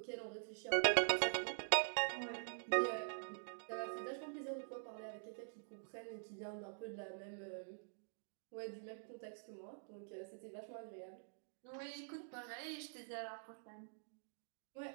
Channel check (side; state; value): left; silent; digital silence